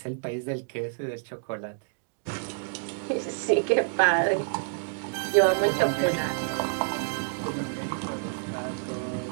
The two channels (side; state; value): left; silent; digital silence